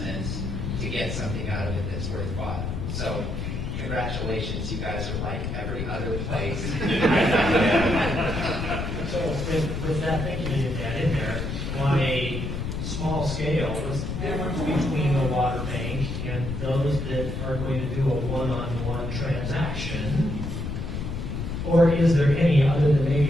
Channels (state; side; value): noise; left; rumble, 4 dB below the sound